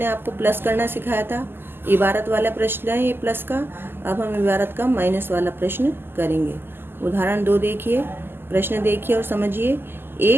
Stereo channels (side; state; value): left; late; 0.10 ms